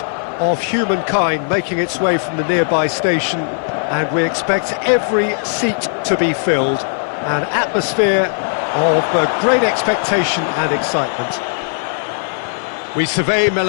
of humankind making its way from the nearby station, and we expect every seat to be filled. An atmosphere of great expectation and excitement. We survey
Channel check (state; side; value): silent; right; digital silence